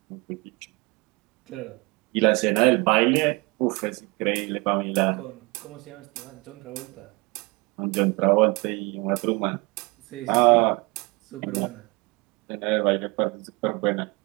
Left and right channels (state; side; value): quieter; left; 26.8 dB